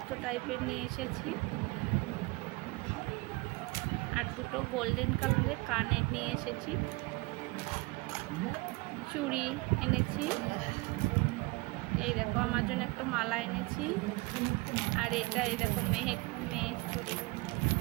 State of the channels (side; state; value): left; quieter; 23.9 dB